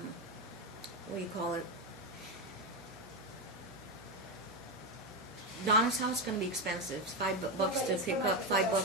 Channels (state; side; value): noise; right; hum, 21 dB below the sound